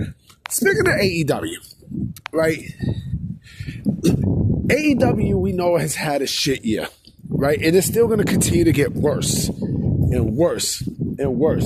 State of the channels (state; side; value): identical; both; correlation 1.00